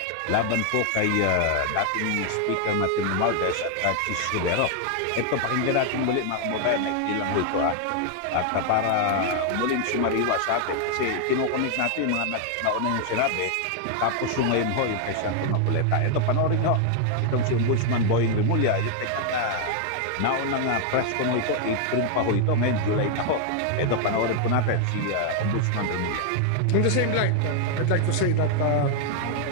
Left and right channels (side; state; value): both; different; correlation 0.00